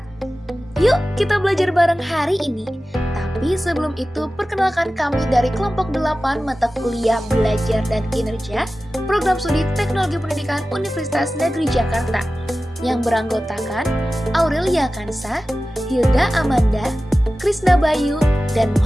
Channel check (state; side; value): normal; both; correlation 0.95